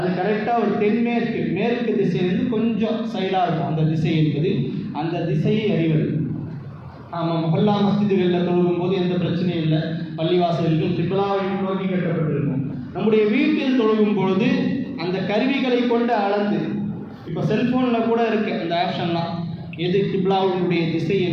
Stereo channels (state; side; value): identical; both; correlation 1.00